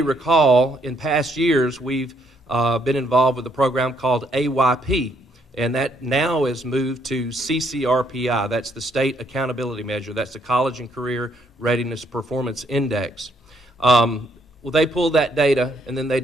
recall, in past years, we've been involved with a program called AYP, and that now is moved to CCRPI. That's the State Accountability Measure. That's the College and Career Readiness Performance Index. Well, they pulled that data, and then they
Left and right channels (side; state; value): both; normal; correlation 0.70